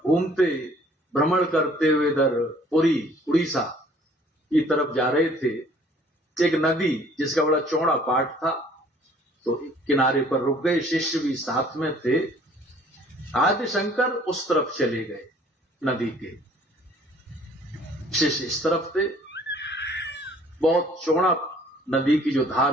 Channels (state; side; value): normal; both; correlation 0.56